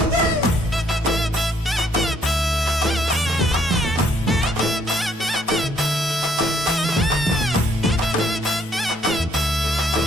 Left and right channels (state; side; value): normal; both; correlation 0.67